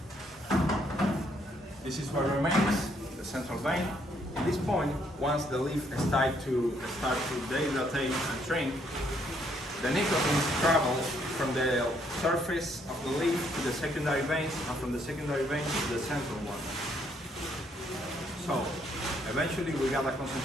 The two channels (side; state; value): both; normal; correlation 0.70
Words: This is what remains, the central vein. At this point, once the leaf start to dehydrate and shrink, the nicotine travels from the surface of the leaf to the secondary veins, and from the secondary veins to the central one. So, eventually we got a